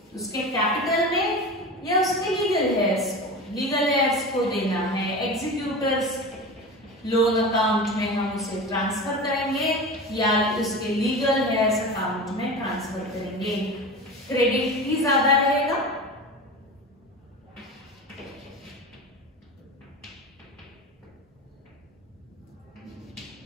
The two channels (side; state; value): both; normal; correlation 0.30